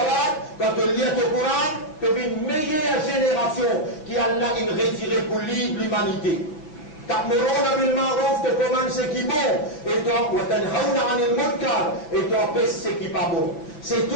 quand tu lis le Coran, tu es une meilleure génération qui a là une retirée pour l'humanité. Ta'muruna bil ma'ruf, tu commandes ce qui est bon, et toi, wa tanhauna 'anil munkar, et toi, pèse ce qui n'est pas bon. C'est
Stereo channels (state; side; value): late; right; 6.1 ms